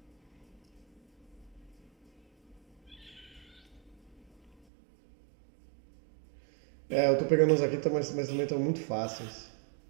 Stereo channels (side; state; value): left; drops out; at 4.5 s